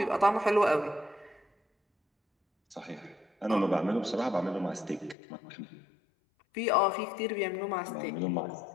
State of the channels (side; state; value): right; drops out; at 5.2 s